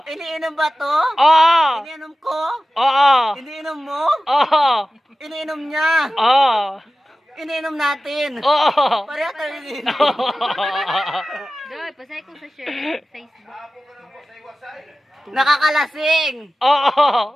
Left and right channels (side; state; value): both; normal; correlation 0.95